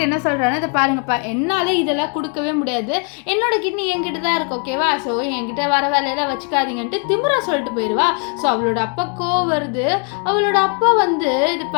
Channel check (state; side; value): quieter; right; 39.6 dB